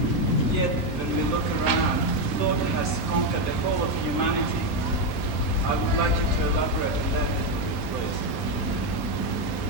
yet when we look around, thought has conquered the whole of humanity. I would like you to elaborate on that, please.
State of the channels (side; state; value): both; normal; correlation 0.06